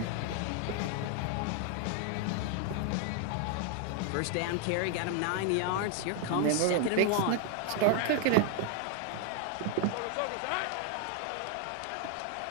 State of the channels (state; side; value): different; both; correlation 0.00